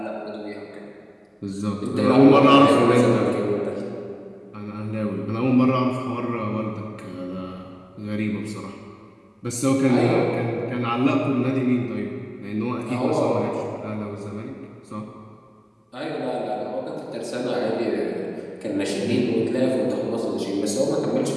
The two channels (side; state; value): both; identical; correlation 1.00